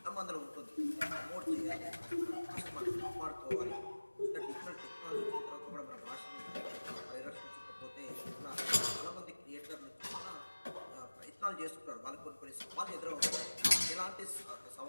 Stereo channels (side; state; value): both; inverted; correlation -1.00